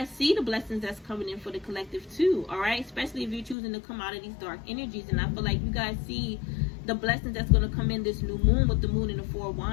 see the blessings that's coming in for the collective too. All right, especially if you're choosing to come out of these dark energies. And I feel like you guys see the blessings that's going to come in this new moon with the moon and the 4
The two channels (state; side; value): drops out; right; at 3.6 s